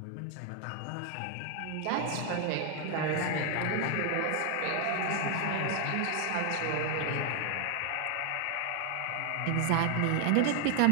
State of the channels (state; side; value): different; both; correlation 0.00